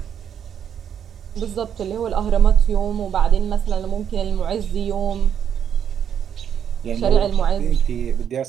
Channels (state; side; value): quieter; left; 8.6 dB